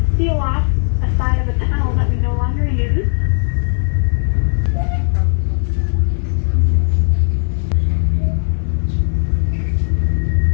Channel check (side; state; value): right; silent; digital silence